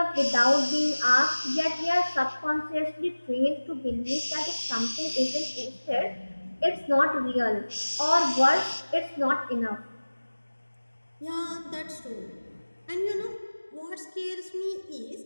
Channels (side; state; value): both; inverted; correlation -1.00